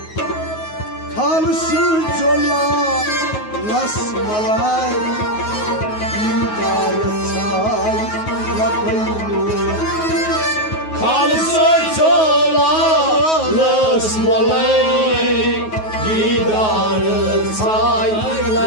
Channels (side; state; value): right; late; 9.4 ms